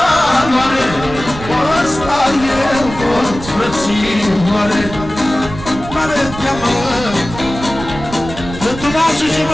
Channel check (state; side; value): noise; right; rumble, 11 dB below the sound